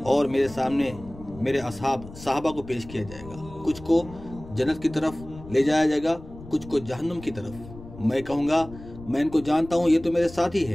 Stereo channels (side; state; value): left; noise; rumble, 16 dB below the sound